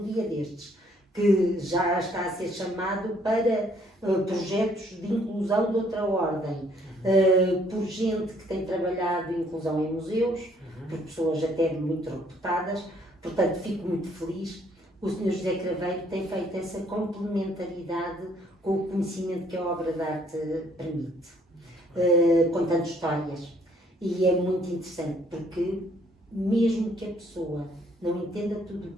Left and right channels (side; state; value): both; normal; correlation 0.64